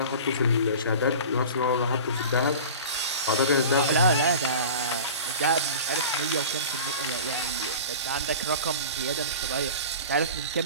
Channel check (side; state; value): both; inverted; correlation -0.36